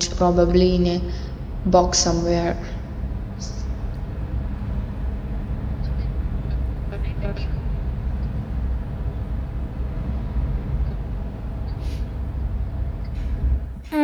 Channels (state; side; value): identical; both; correlation 1.00